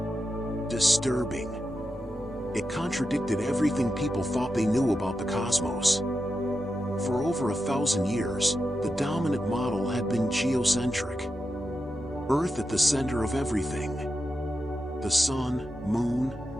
disturbing. It contradicted everything people thought they knew about the cosmos. For over 1,000 years, the dominant model had been geocentric. Earth at the center of everything. The sun, moon,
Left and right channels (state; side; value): normal; both; correlation 0.89